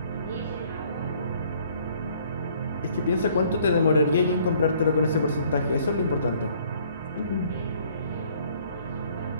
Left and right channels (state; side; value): inverted; both; correlation -0.60